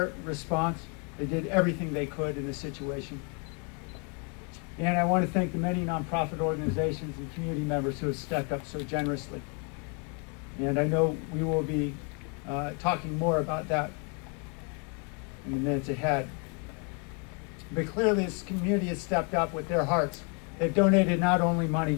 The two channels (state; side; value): quieter; right; 36.2 dB